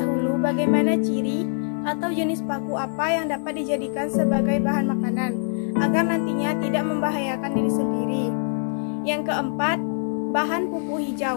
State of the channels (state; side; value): silent; right; digital silence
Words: bagaimana ciri atau jenis paku apa yang dapat dijadikan sebagai bahan makanan, agar nantinya tidak membahayakan diri sendiri. Yang keempat, bahan pupuk